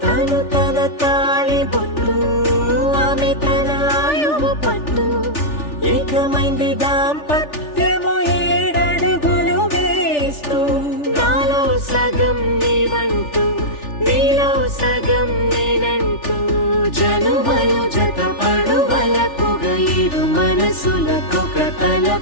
తను తన తాళి బొట్టు ఆమె తన ఆయువు పట్టు ఏకమైంది దాంపత్యము 7 అడుగులు వేస్తూ నాలో సగం నీవంటూ నీలో సగం నేనంటూ జనుమలు జతపడువలపుగా ఇరు మనసులకొక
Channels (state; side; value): late; right; 3.4 ms